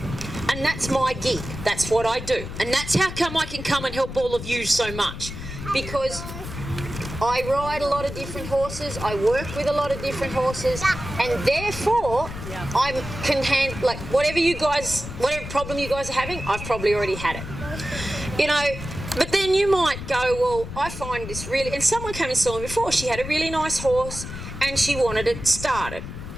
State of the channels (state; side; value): noise; left; rumble, 9 dB below the sound